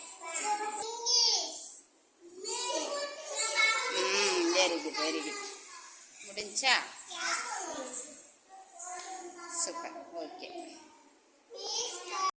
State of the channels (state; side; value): identical; both; correlation 1.00